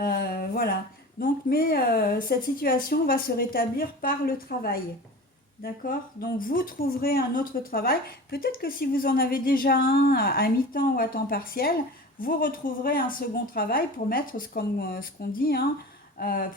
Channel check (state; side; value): normal; both; correlation 0.35